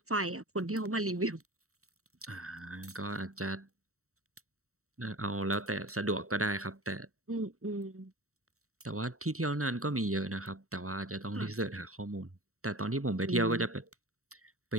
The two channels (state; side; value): late; left; 0.64 ms